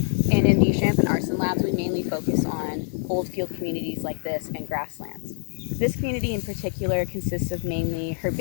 And in the Champ and Aarssen labs we mainly focus on old field communities like this and grasslands. This community in particular consists of mainly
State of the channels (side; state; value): right; silent; 62 dB below the other